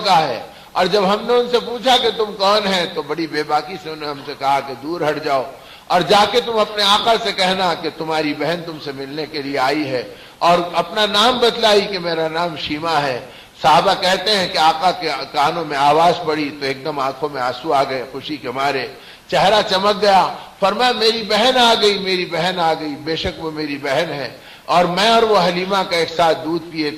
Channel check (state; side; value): identical; both; correlation 1.00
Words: ہے. اور جب ہم نے ان سے پوچھا کہ تم کون ہیں تو بڑی بے باکی سے انہوں نے ہم سے کہا کہ دور ہٹ جاؤ اور جا کے تم اپنے آقا سے کہنا کہ تمہاری بہن تم سے ملنے کے لیے آئی ہے. اور اپنا نام بتلائی کہ میرا نام شیما ہے. صحابہ کہتے ہیں کہ آقا کے کانوں میں آواز پڑی تو ایک دم آنکھوں میں آنسو آ گئے خوشی کے مارے, چہرہ چمک گیا. فرمایا میری بہن آ گئی, میری بہن آ گئی, بے شک وہ میری بہن ہے اور میں اور وہ حلیمہ کا ایک ساتھ دودھ پیے